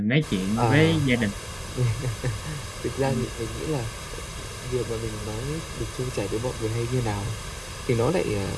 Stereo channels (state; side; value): identical; both; correlation 1.00